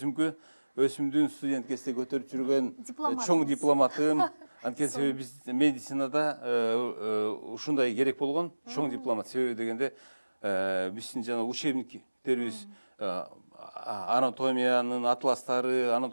Өсүмдүн студент кезде көтөрүп жүргөн чоң дипломатым. Анткени себеби биз медицинада ушундай керек болгон чоң дипломат. Себеби дегенде биздин жана учебниктерибиз анатомиянын атластары,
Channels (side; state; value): both; inverted; correlation -1.00